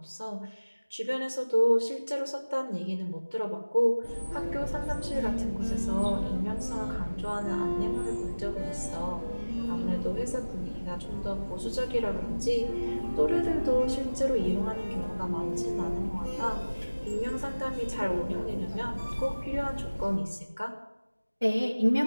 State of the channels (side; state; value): both; inverted; correlation -1.00